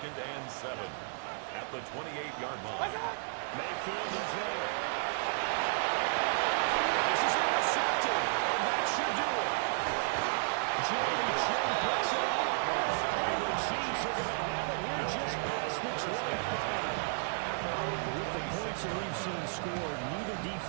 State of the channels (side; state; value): left; silent; digital silence